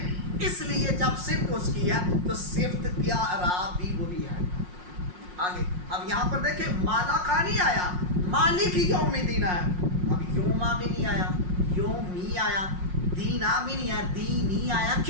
اس لیے جب صفت اس کی ہے تو صفت کیا اعراب بھی وہی ہے. آگے اب یہاں پر دیکھیں مالا کا نہیں آیا، مالک یوم الدین آیا. اب یوما بھی نہیں آیا، یومی آیا، دینا بھی نہیں آیا، دینی آیا.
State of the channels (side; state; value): left; late; 5.6 ms